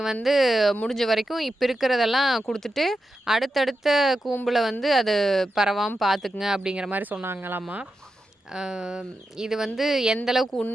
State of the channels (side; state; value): both; normal; correlation 0.89